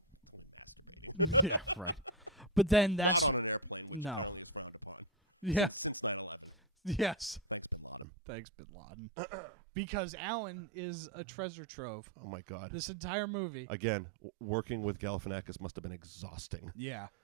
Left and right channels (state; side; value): drops out; left; at 8.1 s